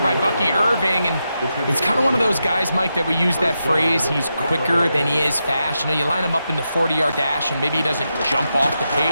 Bucky Irving, and it's kind of one of those guys, Mike, that we use that phrase, he's quicker than he is fast. You know, you line him up in the 40-yard dash, and maybe he doesn't jump off the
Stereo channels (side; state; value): both; inverted; correlation -0.87